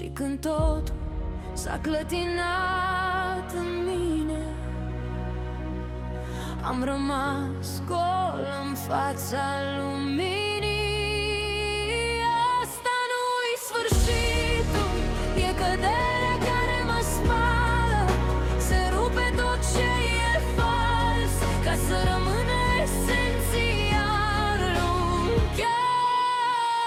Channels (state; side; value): identical; both; correlation 1.00